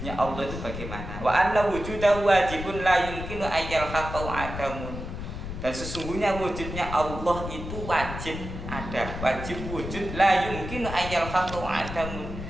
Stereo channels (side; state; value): left; noise; rumble, 8 dB below the sound